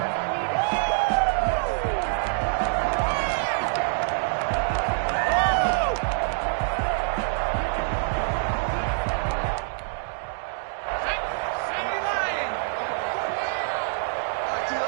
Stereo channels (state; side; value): silent; left; digital silence